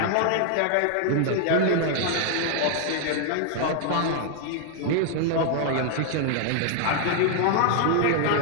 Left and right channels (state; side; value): different; both; correlation 0.00